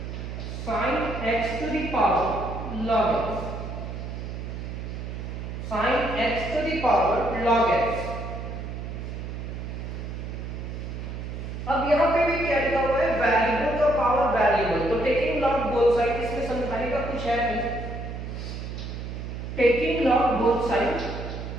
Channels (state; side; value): noise; right; hum, 7 dB below the sound